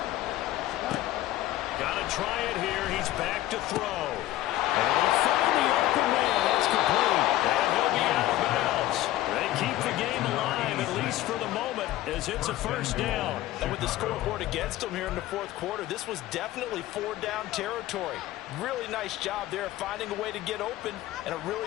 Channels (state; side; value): quieter; right; 15.1 dB